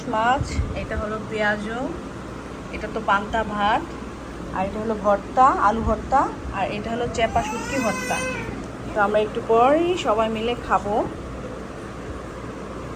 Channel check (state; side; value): identical; both; correlation 1.00